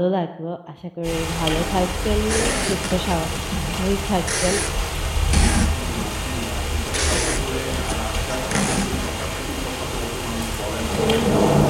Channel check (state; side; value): identical; both; correlation 1.00